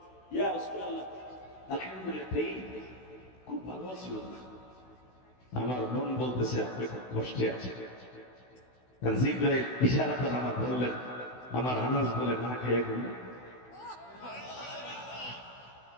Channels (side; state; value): right; late; 16 ms